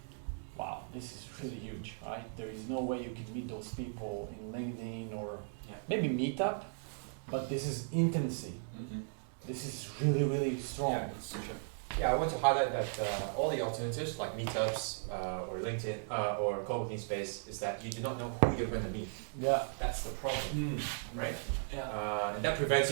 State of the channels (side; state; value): left; silent; digital silence